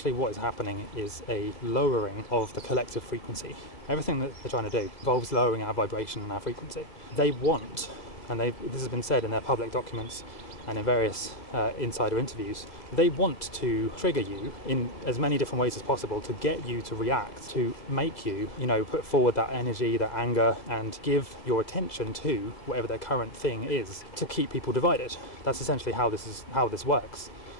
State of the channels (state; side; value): late; right; 2.0 ms